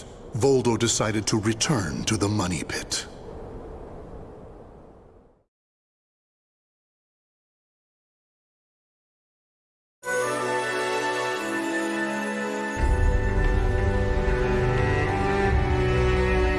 Voldo decided to return to the money pit.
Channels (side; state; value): both; identical; correlation 1.00